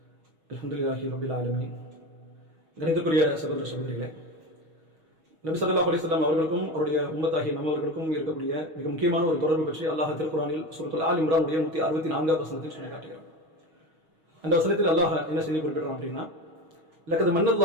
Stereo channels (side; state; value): left; late; 6.3 ms